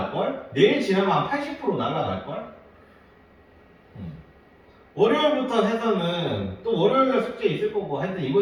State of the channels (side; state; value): both; identical; correlation 1.00